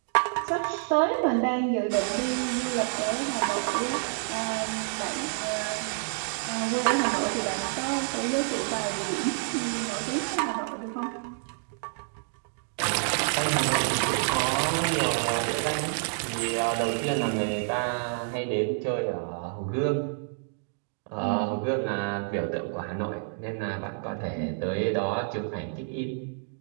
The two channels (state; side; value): silent; left; digital silence